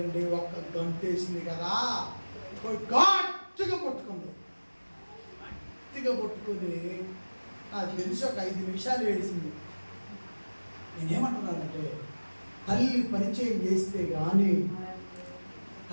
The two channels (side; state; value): both; inverted; correlation -1.00